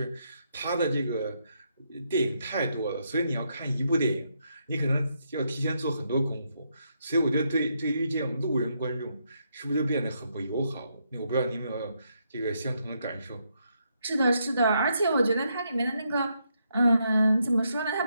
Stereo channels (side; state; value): both; inverted; correlation -0.78